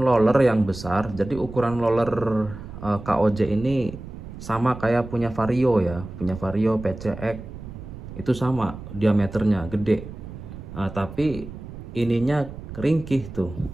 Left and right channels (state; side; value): noise; right; rumble, 12 dB below the sound